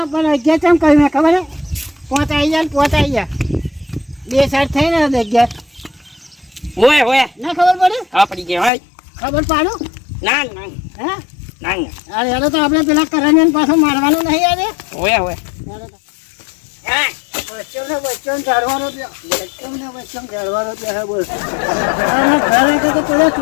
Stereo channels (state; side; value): drops out; right; at 8.7 s